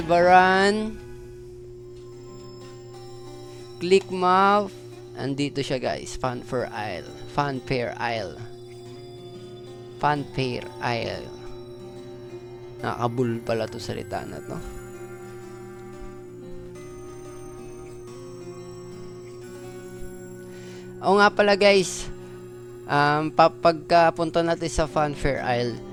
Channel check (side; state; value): both; identical; correlation 1.00